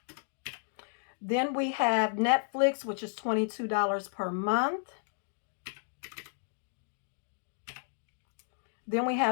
Then we have Netflix, which is $22 per month. Then we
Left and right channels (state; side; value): silent; right; digital silence